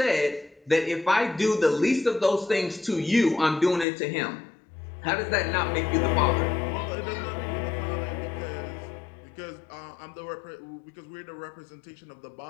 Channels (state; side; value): drops out; right; at 3.9 s